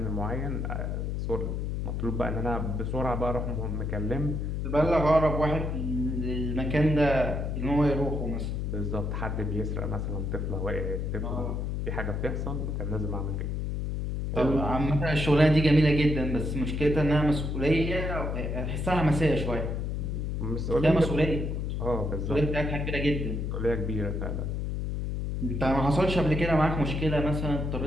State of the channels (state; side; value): noise; left; hum, 2 dB below the sound